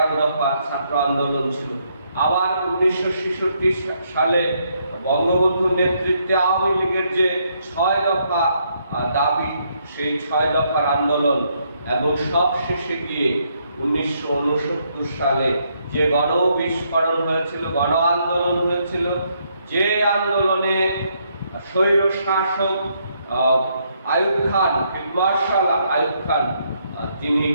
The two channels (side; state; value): both; inverted; correlation -0.74